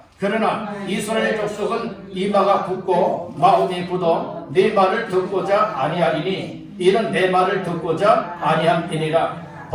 그러나 이스라엘 족속은 이마가 굳고 마음이 굳어 네 말을 듣고자 아니하리니 이는 내 말을 듣고자 아니함이니라.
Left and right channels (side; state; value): both; identical; correlation 1.00